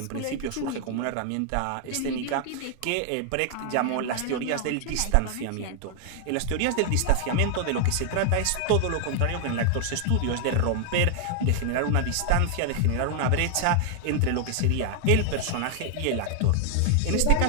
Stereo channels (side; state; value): both; different; correlation 0.00